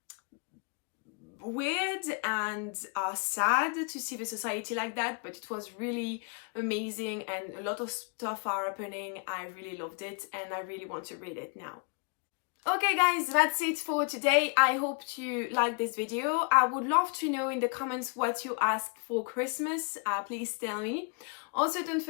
weird and sad to see the society like that, but it was really amazing, and a lot of stuff are happening. I really loved it, and I really want to read it now. Okay guys, that's it for today. I hope you liked this video. I would love to know in the comments what you asked for Christmas. Please tell me. Also, don't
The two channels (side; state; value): right; quieter; 36.9 dB